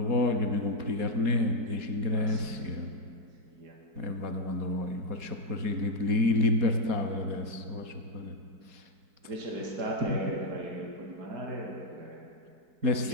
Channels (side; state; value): left; late; 4.6 ms